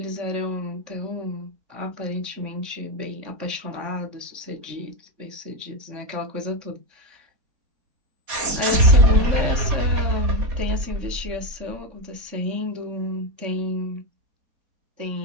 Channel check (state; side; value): late; left; 4.2 ms